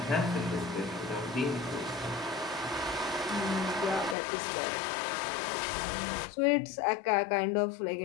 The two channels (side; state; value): right; drops out; at 4.2 s